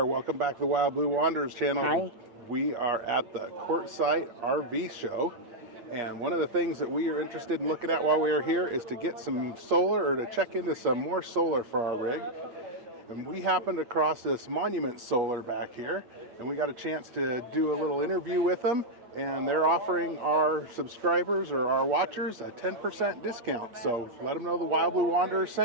welcome back to the Wild Blue Wanderers channel. Hi. We are at the Quartzsite RV Show, and one of the things that we are interested in looking at while we are here is to get some solar, or to check into some more solar for our rig. And we happened across this Monument Solar back here, and we got a chance to do a little interview with them, and they're offering our subscribers or our watchers a 10% discount. So let them know the Wild Blue Wanderers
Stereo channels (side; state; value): left; late; 8.5 ms